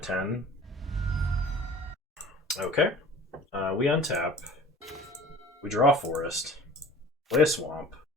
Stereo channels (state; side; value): normal; both; correlation 0.44